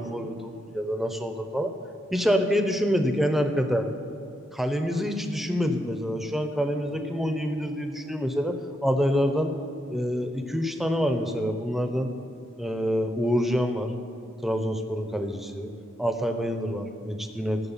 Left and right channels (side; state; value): both; normal; correlation 0.82